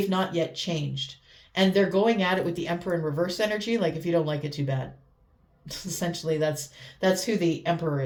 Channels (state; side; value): identical; both; correlation 1.00